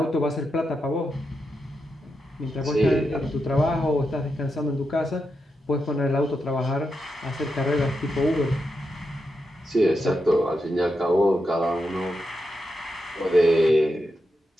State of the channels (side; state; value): both; normal; correlation 0.86